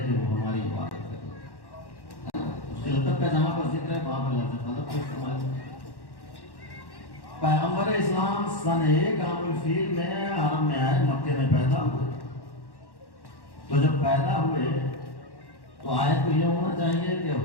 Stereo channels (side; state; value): right; late; 1.1 ms